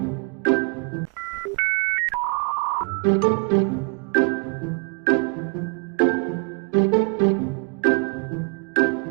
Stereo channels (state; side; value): quieter; left; 36.1 dB